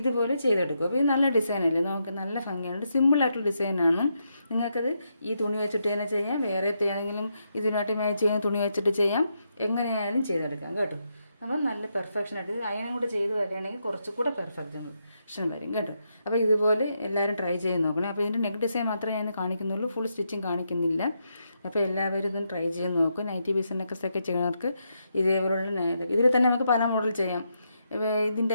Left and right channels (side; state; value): both; inverted; correlation -0.81